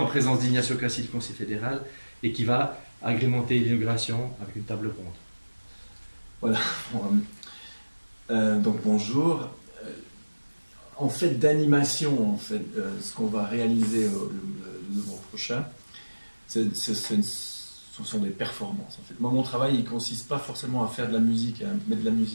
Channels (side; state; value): both; inverted; correlation -1.00